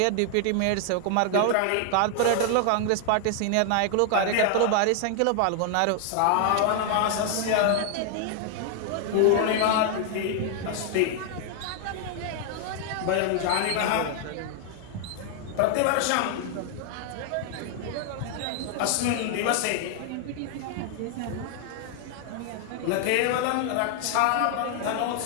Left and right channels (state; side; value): different; both; correlation 0.00